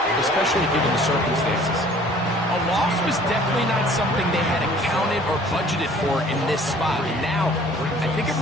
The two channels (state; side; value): normal; both; correlation 0.52